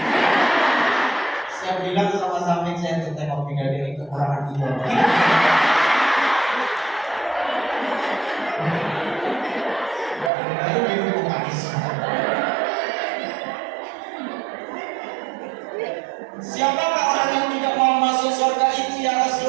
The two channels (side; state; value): left; drops out; at 10.3 s